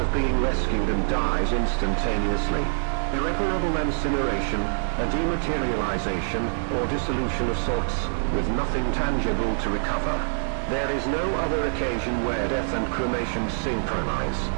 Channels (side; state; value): left; silent; digital silence